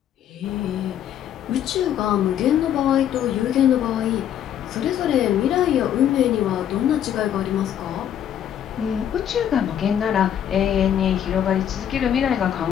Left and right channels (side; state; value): right; quieter; 10.0 dB